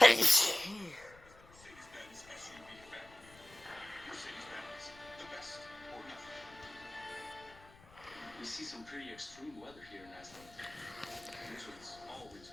Mercedes-Benz SUV family. Mercedes-Benz, the best or nothing. We see some pretty extreme weather here in Iceland. Blizzards all winter.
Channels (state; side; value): noise; left; rumble, 23 dB below the sound